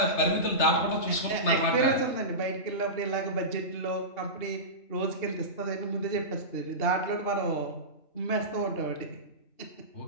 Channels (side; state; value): right; late; 3.3 ms